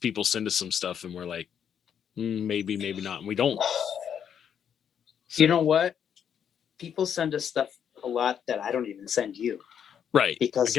send us some stuff and we're like, maybe not, and we don't. So, you know what? People send us stuff a lot that I don't even send you. Right. Because I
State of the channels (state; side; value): quieter; right; 8.4 dB